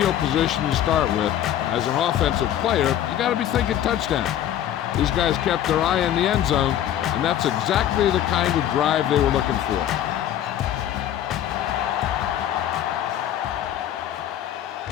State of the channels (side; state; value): right; quieter; 11.3 dB